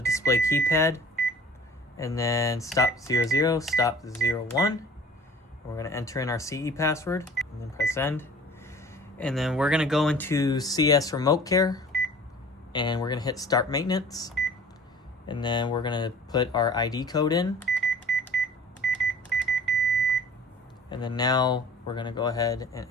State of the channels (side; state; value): both; normal; correlation 0.46